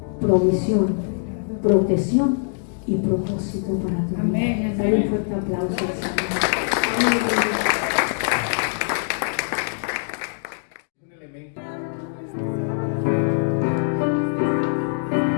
provisión, protección y propósito para tu vida. Amén. Dale un fuerte aplauso al Señor. Amén. Un elemento.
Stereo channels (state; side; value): silent; right; digital silence